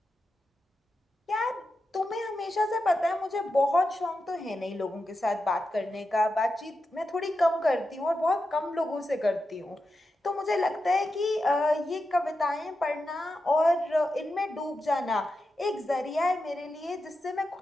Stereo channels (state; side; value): normal; both; correlation 0.89